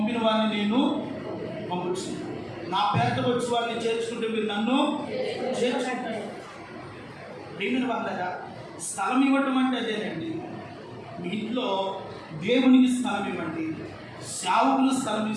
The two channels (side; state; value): both; identical; correlation 1.00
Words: వారిని నేను పంపించు. నా పేరుతో వచ్చి వారిని చేర్చుకుంటే మీరు నన్ను చేర్చుకుంటారు. ప్రియమైన వాళ్ళగా స్థలం ఇవ్వటం అంటే అదేనండి. మీ ఇంట్లో దేవునికి స్థలం ఇవ్వండి. సేవకులు స్థలం